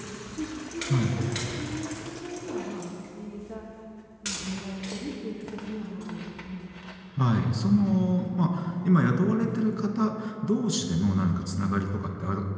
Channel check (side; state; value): both; identical; correlation 1.00